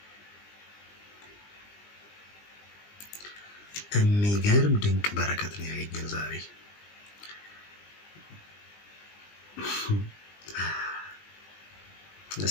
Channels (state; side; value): late; right; 20 ms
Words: የሚገርም ድንቅ በረከት ነው ያገኘን ዛሬ።